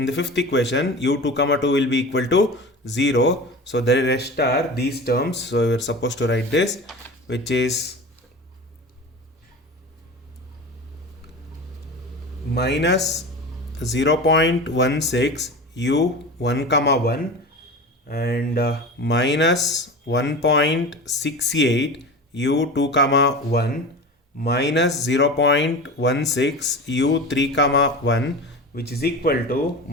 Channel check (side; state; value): both; normal; correlation 0.31